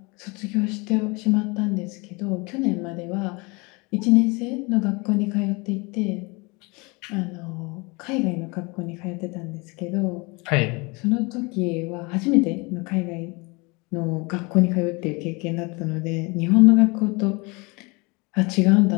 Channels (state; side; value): quieter; right; 27.6 dB